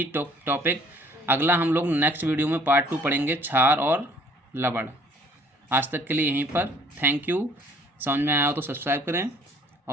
टॉपिक। अगला हम लोग नेक्स्ट वीडियो में पार्ट 2 पढ़ेंगे क्षार और लवण। आज तक के लिए यहीं पर, थैंक यू। समझ में आया हो तो सब्सक्राइब करें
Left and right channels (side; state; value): both; normal; correlation 0.57